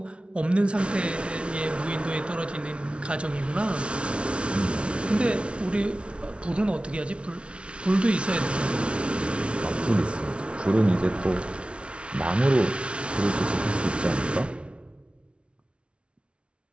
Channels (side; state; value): left; late; 0.059 ms